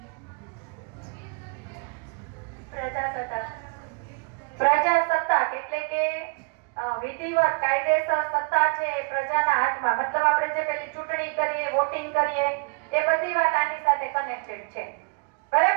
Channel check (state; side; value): quieter; left; 33.4 dB